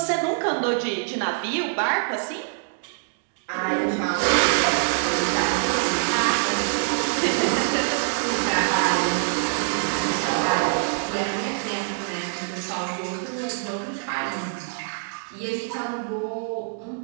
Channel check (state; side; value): silent; left; digital silence